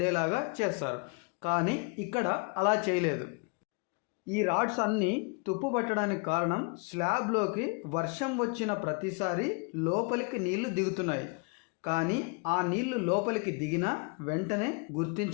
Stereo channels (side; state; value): right; quieter; 32.9 dB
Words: చేస్తారు, కానీ ఇక్కడ అలా చేయలేదు. ఈ రాడ్స్ అన్నీ తుప్పు పట్టడానికి కారణం స్లాబ్లోకి వర్షం వచ్చిన ప్రతిసారి లోపలికి నీళ్లు దిగుతున్నాయి, కానీ ఆ నీళ్లు లోపలికి దిగినా వెంటనే